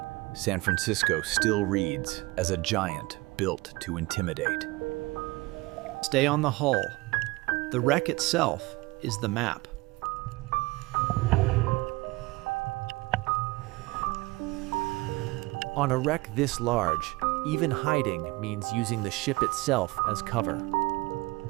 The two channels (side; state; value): left; quieter; 22.4 dB